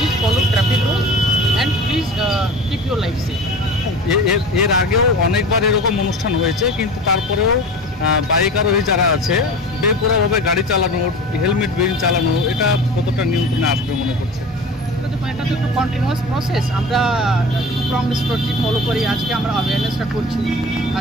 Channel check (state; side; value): normal; both; correlation 0.35